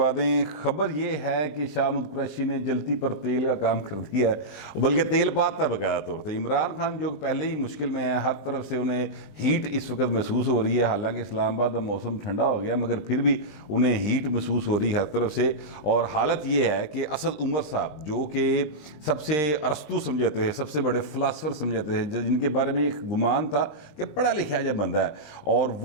दें। ख़बर ये है कि शाह महमूद कुरैशी ने जलती पर तेल का काम कर दिया है, बल्कि तेल पाता है बकायदा तौर पर। इमरान खान जो पहले ही मुश्किल में है, हर तरफ से उन्हें हीट इस वक्त महसूस हो रही है। हालांकि इस्लामाबाद का मौसम ठंडा हो गया, मगर फिर भी उन्हें हीट महसूस हो रही है हर तरफ से। और हालत ये है कि असद उमर साहब, जो कि सबसे अरस्तू समझाते हैं, सबसे बड़े फ़िलासफ़र समझाते हैं, जिनके बारे में एक गुमान था कि पढ़ा लिखा जब बंदा है, और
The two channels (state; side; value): late; right; 20 ms